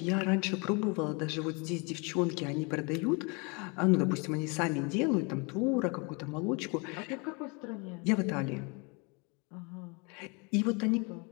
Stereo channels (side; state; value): right; quieter; 31.0 dB